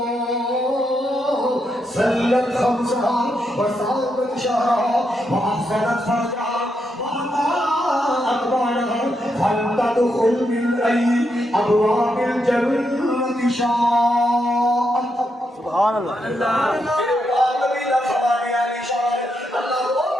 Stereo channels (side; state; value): both; normal; correlation 0.82